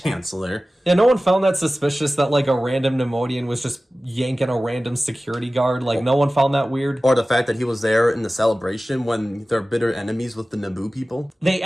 Yeah, no one found that suspicious that, like, a random Nemoidian was just yanking a random security guard. Like, no one found that weird. Or the fact that he was there in the celebration when they're bitter enemies with the Naboo people. They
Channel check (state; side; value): normal; both; correlation 0.96